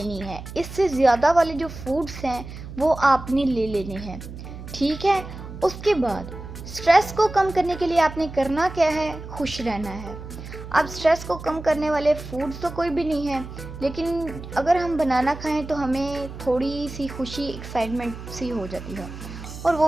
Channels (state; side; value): noise; right; hum, 12 dB below the sound